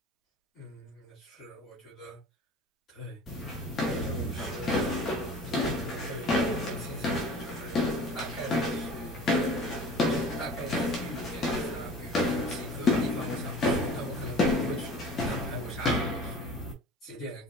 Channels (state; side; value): normal; both; correlation 0.42